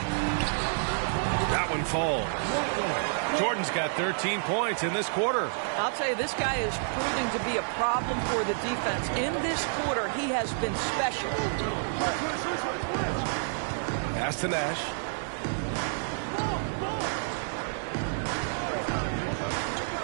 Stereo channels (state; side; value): silent; left; digital silence